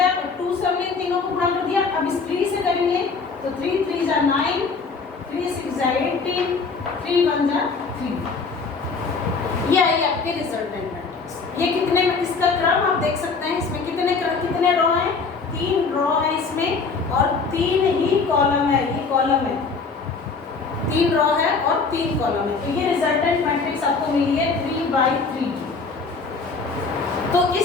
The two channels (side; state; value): right; quieter; 4.6 dB